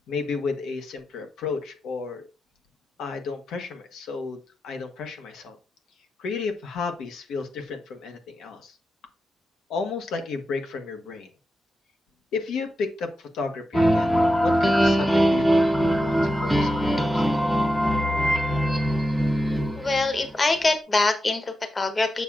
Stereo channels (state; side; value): normal; both; correlation 0.89